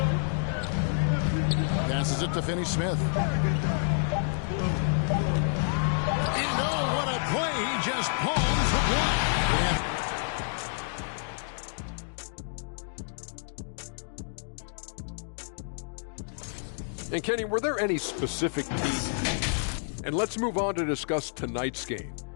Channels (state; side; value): silent; right; digital silence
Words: Passes it to Finney-Smith. Oh, what a play. He just palms the block. And Kenny, were there any specific teams? And let's move on to discuss tonight's game.